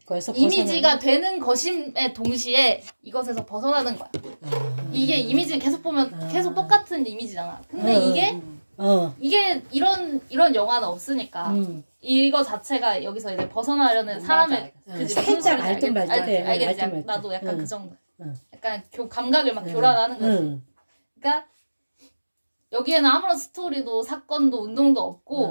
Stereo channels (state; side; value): inverted; both; correlation -1.00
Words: 이미지가 되는 것임에 동시에 이것에서 벗어나는 거야. 이게 이미지는 계속 보면 계속 똑같은 이미지잖아. 근데 이게 이런 영화는 없으니까 이거 자체가 여기서 이제 벗어나려는 사람의 그지 살짝 알든 말든 알겠지. 나도 약간 그 정도. 약간 감각을 막 교란하는 거지. 그러니까 여기에는 아무런 스토리도 사건도 운동도